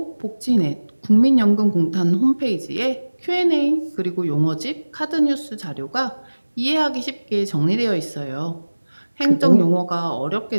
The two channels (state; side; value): inverted; both; correlation -1.00